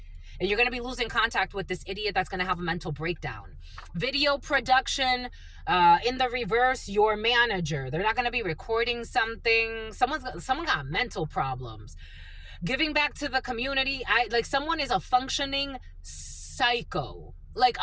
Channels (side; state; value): both; identical; correlation 1.00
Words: And you're going to be losing contact with this idiot that's going to have a mental breakdown. Video production, in the reverse, your manager. They're not going to be recording something. Someone got mental problems. Giving back to the community. Someone is a functioning psycho. Like